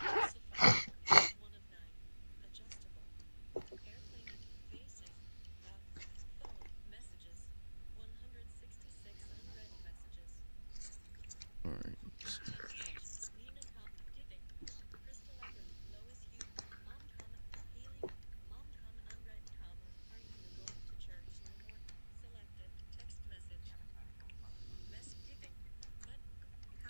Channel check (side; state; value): both; inverted; correlation -1.00